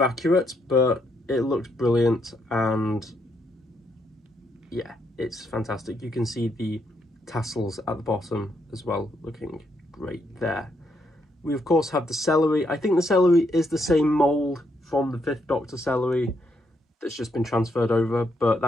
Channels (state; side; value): normal; both; correlation 0.76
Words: accurate, but it looks brilliant, and yeah, it's fantastic. You can see the tassels at the bottom as well, looking great there. We of course have the celery. I think the celery is the same mould from the Fifth Doctor celery that's just been transferred over, but